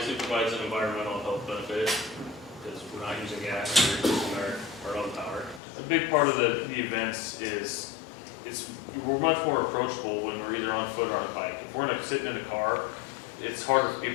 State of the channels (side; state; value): right; drops out; at 5.6 s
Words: provides an environmental health benefit because we're not using gas, we're using our own power. A big part of the events is we're much more approachable when we're either on foot or on a bike. If we're sitting in a car, it's harder for